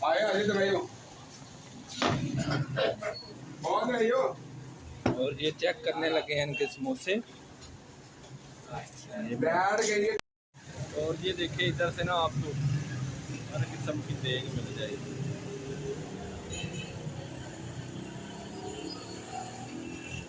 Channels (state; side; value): identical; both; correlation 1.00